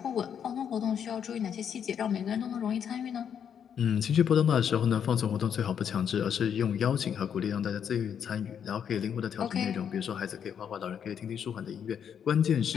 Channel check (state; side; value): quieter; right; 8.1 dB